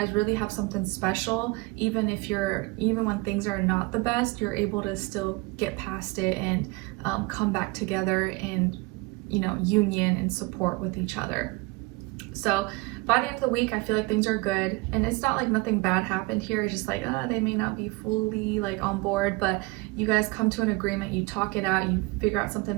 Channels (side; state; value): left; quieter; 24.6 dB